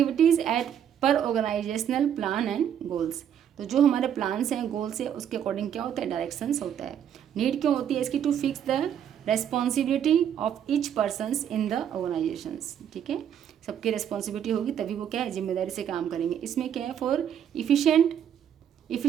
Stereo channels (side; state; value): left; quieter; 9.2 dB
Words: एट पर ऑर्गेनाइजेशनल प्लान एंड गोल्स, तो जो हमारे प्लान्स हैं, गोल्स है, उसके अकॉर्डिंग क्या होता है, डायरेक्शंस होता है। नीड क्यों होती है इसकी, to fix the responsibility of each persons in the organisations, ठीक है। सबकी रेस्पॉन्सिबिलिटी होगी तभी वो क्या है, जिम्मेदारी से काम करेंगे। इसमें क्या है, for